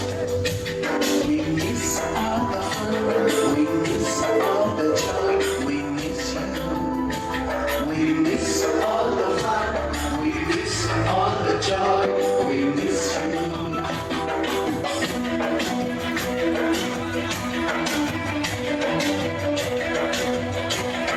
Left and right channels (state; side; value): identical; both; correlation 1.00